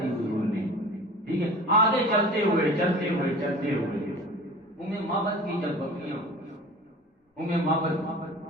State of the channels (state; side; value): normal; both; correlation 0.40